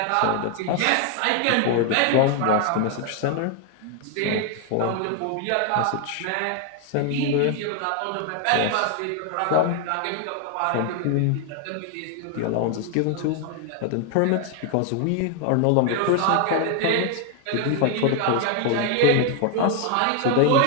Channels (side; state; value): both; different; correlation 0.00